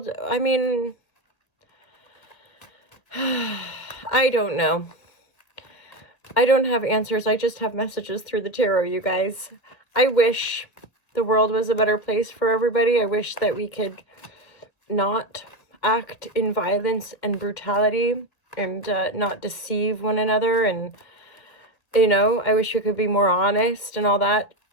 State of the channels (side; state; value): right; late; 1.9 ms